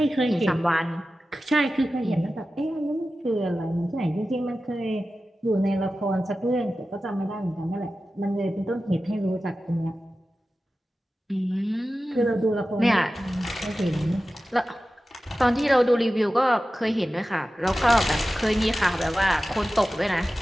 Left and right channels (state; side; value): normal; both; correlation 0.94